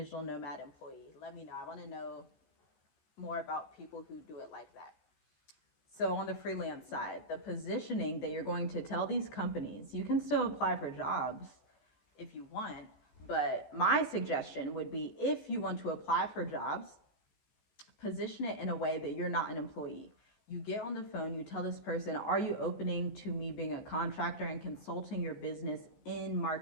nomad employee. Let me know. I want to know more about people who do it like that. So on the freelance side, the positioning that you're going to tell these companies, you can still apply for jobs if you want, but my suggestion would be, if you want to apply for jobs, position it in a way that you're not an employee. You get on the phone, you tell this person, are you opening to me being a contractor and consulting your business in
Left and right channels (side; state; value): right; late; 14 ms